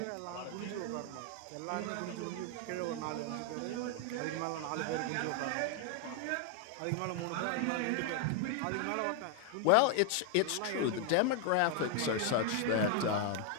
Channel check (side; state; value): both; different; correlation 0.01